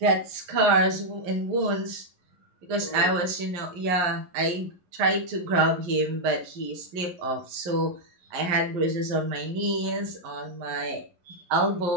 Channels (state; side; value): late; left; 11 ms